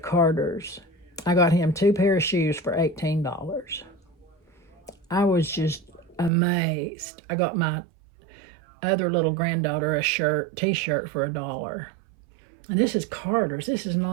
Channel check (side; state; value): left; drops out; at 6.3 s